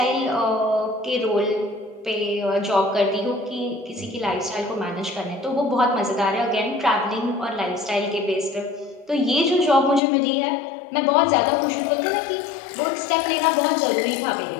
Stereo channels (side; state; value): right; drops out; at 10.0 s